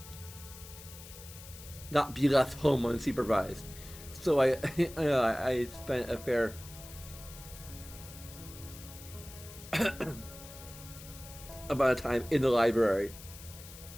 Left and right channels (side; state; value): left; noise; hiss, 16 dB below the sound